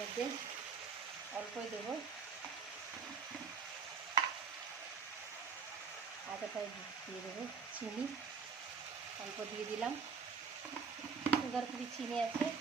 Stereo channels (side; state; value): left; quieter; 5.7 dB